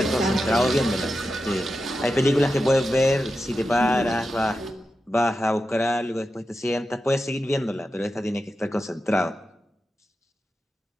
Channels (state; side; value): normal; both; correlation 0.90